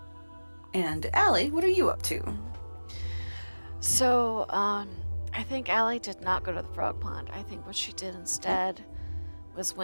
And Allie, what are you up to? So, I think Allie did not go to the frog pond. I think what she did instead was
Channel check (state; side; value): inverted; both; correlation -1.00